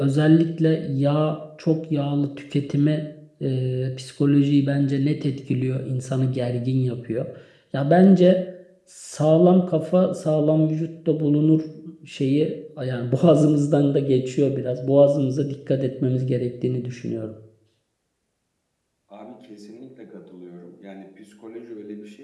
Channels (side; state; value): both; identical; correlation 1.00